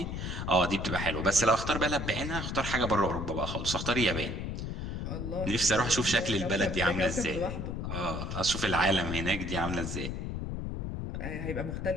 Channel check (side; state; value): left; noise; rumble, 4 dB below the sound